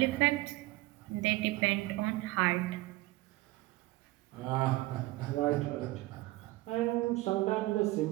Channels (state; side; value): quieter; left; 19.3 dB